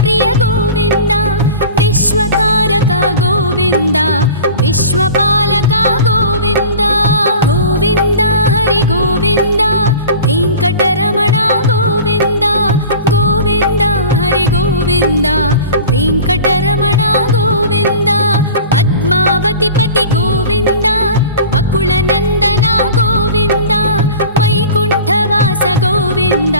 ಗೋವಿಂದ ವಿಶ್ವಕಾರಕ ಗೋವಿಂದ ವಿಶ್ವಪಾಲಕ ಗೋವಿಂದ ಗೋವಿಂದ ಹರಿ ಗೋವಿಂದ ವೆಂಕಟರಮಣ ಗೋವಿಂದ ಗೋವಿಂದ ಹರಿ ಗೋವಿಂದ ವೆಂಕಟರಮಣ ಗೋವಿಂದ. ಪದ್ಮ పద్మావతిపతి గోవింద అకుళనందన గోవింద వైకుంఠవాస గోవింద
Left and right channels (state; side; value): inverted; both; correlation -0.40